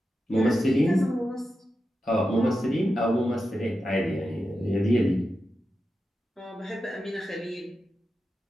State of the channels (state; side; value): normal; both; correlation 0.90